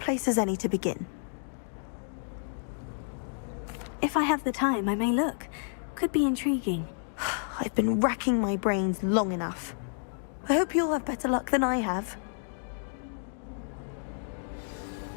as any to begin. If I have the time, I may look. Could be intriguing. I've been racking my brains long enough. I hope you'll have better luck than I have.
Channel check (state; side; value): silent; right; digital silence